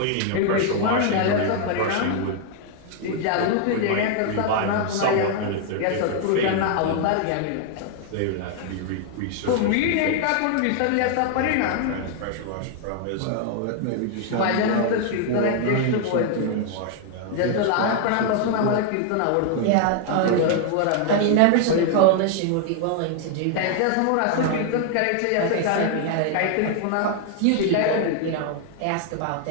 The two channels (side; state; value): both; different; correlation 0.00